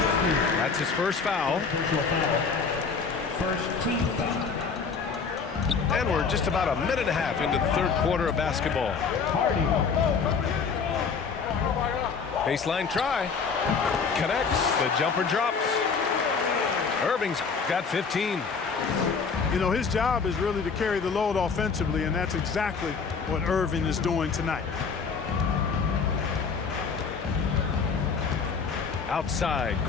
That's his first foul. First team foul. And we're just about a minute and a half into the third quarter of basketball. Baseline try. Connects. The jumper drops. Irving's got 15. You know, his job is really to carry the load offensively, and that's exactly what Irving is doing tonight. Outside,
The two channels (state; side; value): quieter; right; 5.4 dB